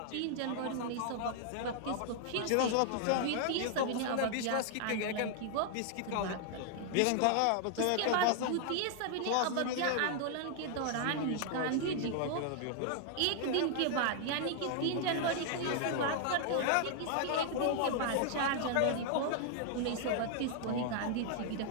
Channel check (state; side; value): different; both; correlation 0.00